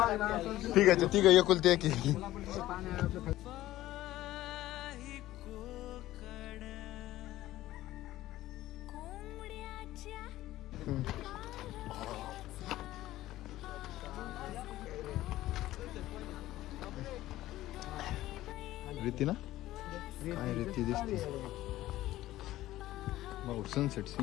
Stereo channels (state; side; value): quieter; right; 15.4 dB